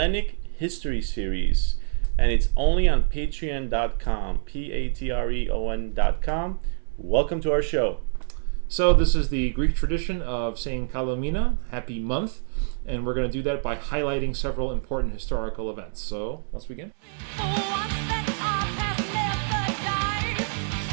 History series. And it's only on patreon.com, Patreon.com. Welcome to our show. So this is the Greek tradition of saying Kalo Mina, happy month, and we're going to do that by highlighting several important historical events. So let's begin.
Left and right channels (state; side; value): silent; left; 59 dB below the other